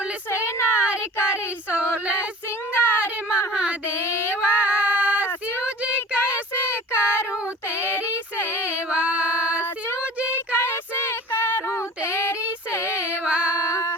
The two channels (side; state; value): both; normal; correlation 0.41